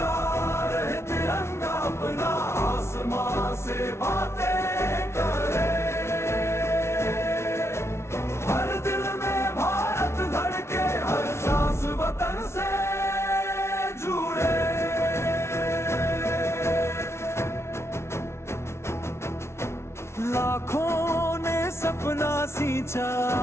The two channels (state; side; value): late; right; 0.13 ms